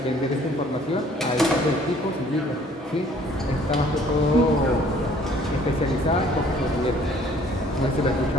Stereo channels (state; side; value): normal; both; correlation 0.57